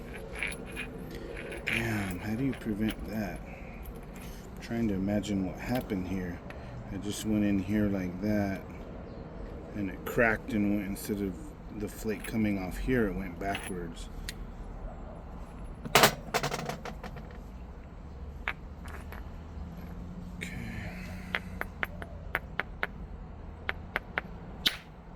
Damn, how do you prevent that? I'm trying to imagine what happened here. I just went in here like that and it cracked and went, instead of the flake coming off here, it went backwards.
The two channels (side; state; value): both; identical; correlation 1.00